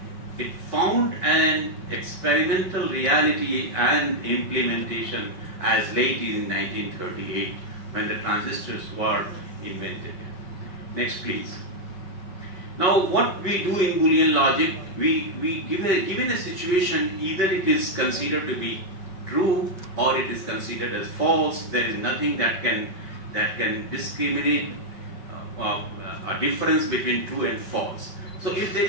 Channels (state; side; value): late; right; 5.2 ms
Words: found an experimental reality and implementation as late in 1938, when the transistors were invented. Next please. Now what we do in Boolean logic, we given a situation, either it is considered to be true or it is considered as false. There is nothing that can discriminate a difference between true and false. So if there